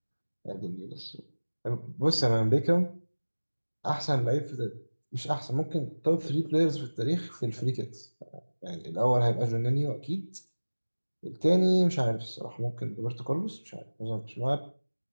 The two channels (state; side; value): inverted; both; correlation -1.00